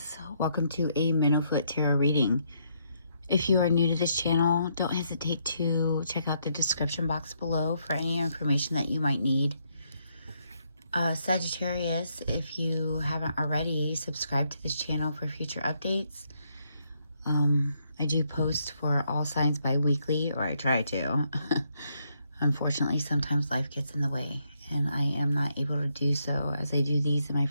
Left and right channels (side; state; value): both; inverted; correlation -0.75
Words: Welcome to a Minnow-Foot Tarot reading. If you are new to this channel, don't hesitate to check out the description box below for any information that you might need. Sagittarius, if you haven't already, subscribe to this channel for future updates. I do post for all signs bi-weekly, or I try to. Unfortunately, sometimes life gets in the way, and I am not able to do so as I do these in my